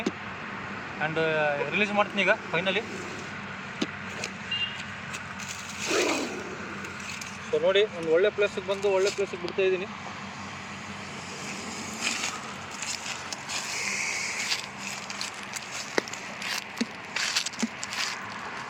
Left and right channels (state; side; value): identical; both; correlation 1.00